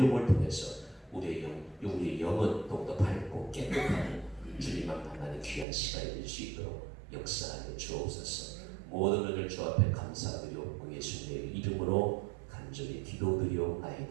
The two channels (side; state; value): left; drops out; at 5.7 s